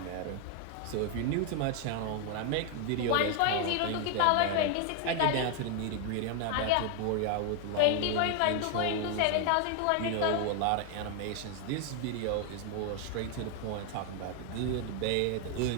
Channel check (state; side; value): different; both; correlation 0.01